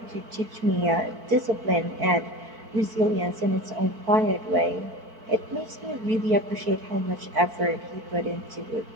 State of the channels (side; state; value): left; late; 4.5 ms